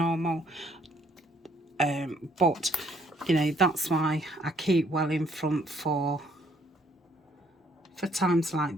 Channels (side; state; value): both; normal; correlation 0.65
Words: but you know, that's why I keep well in front for times like